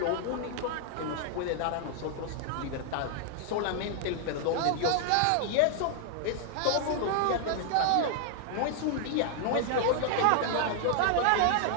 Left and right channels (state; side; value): different; both; correlation 0.00